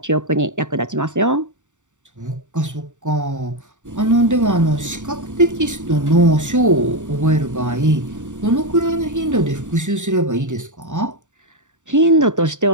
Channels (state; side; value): late; left; 0.85 ms